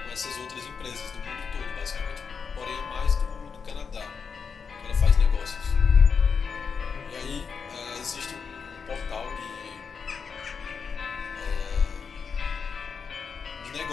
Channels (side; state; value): right; quieter; 5.9 dB